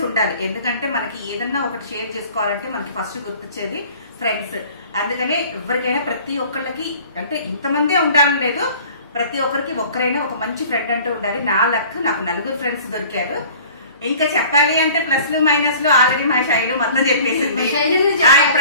ఉండాలి. ఎందుకంటే మనకి ఏదన్నా ఒకటి షేర్ చేసుకోవాలంటే మనకి ఫస్ట్ గుర్తొచ్చేది ఫ్రెండ్స్. అందుకనే ఎవరికైనా ప్రతి ఒక్కళ్ళకి అంటే ఇంతమందే ఉండాలని లేదు, ప్రతి ఒక్కరికి ఒక్కరైనా ఒక మంచి ఫ్రెండ్ అంటూ ఉండాలి. నా లక్ నాకు 4 ఫ్రెండ్స్ దొరికారు. ఇంకా చెప్పాలి అంటే ప్లస్లు మైనస్లు ఆల్రెడీ మా శైలు మొత్తం చెప్పేసింది.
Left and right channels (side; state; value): both; inverted; correlation -0.47